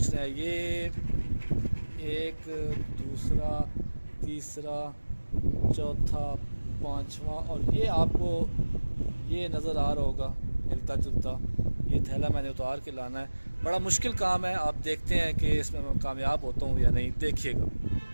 है, ये एक, दूसरा, तीसरा, चौथा, पांचवा, और ये आपको ये नज़र आ रहा होगा हिलता जुलता। ये थैला मैंने उतार के लाना है। बड़ा मुश्किल काम है, आप देखते हैं कि इसमें मैं कामयाब होता हूँ या नहीं। देखिएगा,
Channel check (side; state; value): both; inverted; correlation -1.00